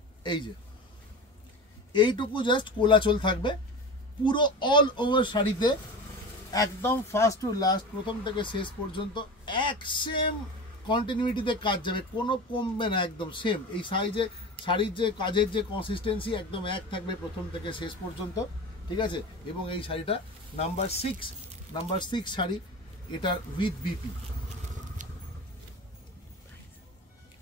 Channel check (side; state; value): both; normal; correlation 0.30